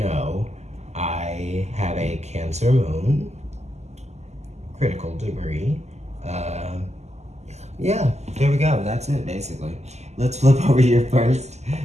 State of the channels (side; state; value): left; late; 0.33 ms